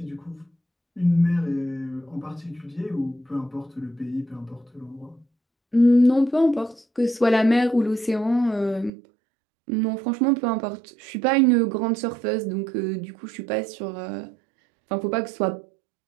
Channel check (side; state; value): left; drops out; at 8.9 s